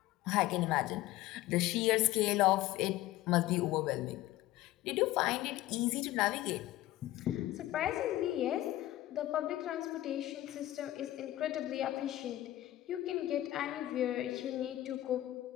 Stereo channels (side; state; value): right; quieter; 15.6 dB